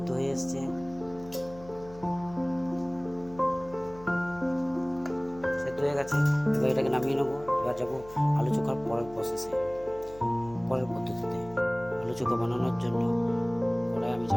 হয়ে এসছে। সেদ্ধ হয়ে গেছে, এবার এটাকে নামিয়ে নেবো। এবার যাবো আলু চোখার পরের প্রসেসে, পরের পদ্ধতিতে। আলু চোখা বানানোর জন্য কড়াই আমি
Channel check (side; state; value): left; noise; hum, 19 dB below the sound